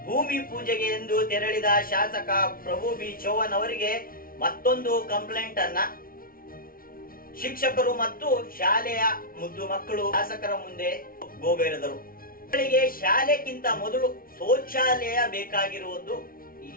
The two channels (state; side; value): late; right; 0.43 ms